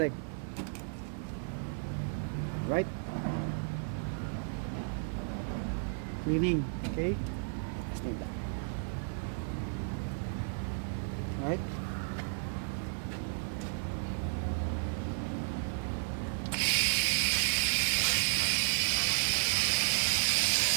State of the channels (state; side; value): silent; left; 56 dB below the other